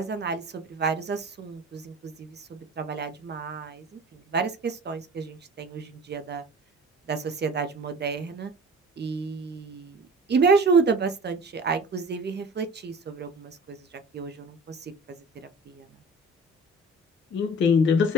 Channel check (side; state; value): both; normal; correlation 0.42